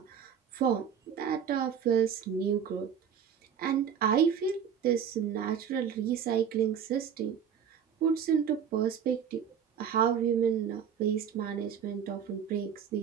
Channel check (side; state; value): left; quieter; 7.9 dB